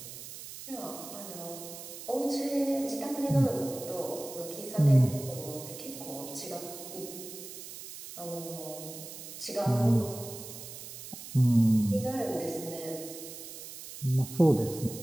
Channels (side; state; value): right; noise; hiss, 12 dB below the sound